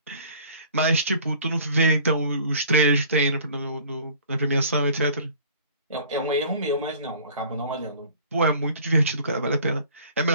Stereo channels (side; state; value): both; inverted; correlation -0.49